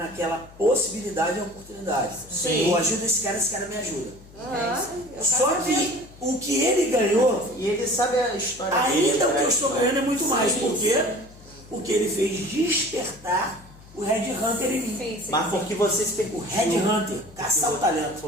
possibilidade e oportunidade. Sim. Eu ajudo esse cara me ajuda. Eu Só quero ver. que o que ele ganhou, e ele sabe a história ainda dele, o que eu estou ganhando é muito mais. Sim. Por quê? Porque ele fez despertar o Red Hunter em mim. Sim, sim. Mas porque você se O permitiu. Red Hunter, caçar o talento.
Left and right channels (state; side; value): noise; left; hum, 22 dB below the sound